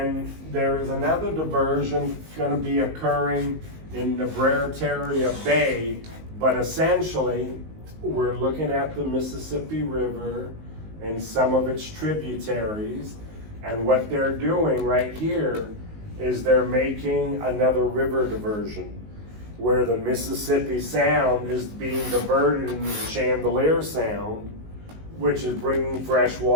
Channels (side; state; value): left; late; 19 ms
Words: there is another diversion going to be occurring in the Bretaria Bay, but essentially we're looking at the Mississippi River and some of its tributaries, and what they're doing right here is they're making another river diversion where the Mississippi Sound is being diverted into the Chandelier Sound, which is bringing fresh